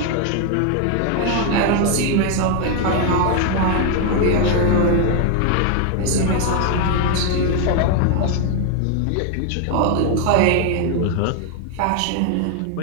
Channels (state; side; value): different; both; correlation 0.01